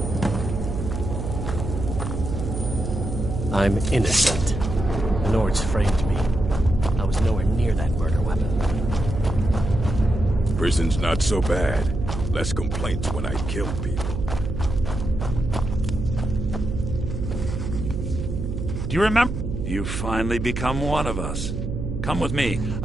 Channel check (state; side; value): noise; right; hum, 4 dB below the sound